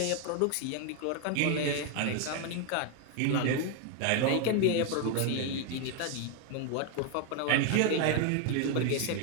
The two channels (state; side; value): different; both; correlation 0.01